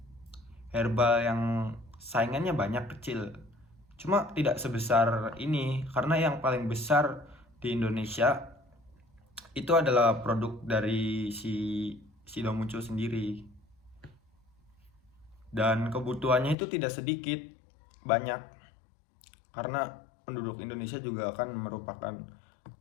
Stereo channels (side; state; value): right; drops out; at 16.6 s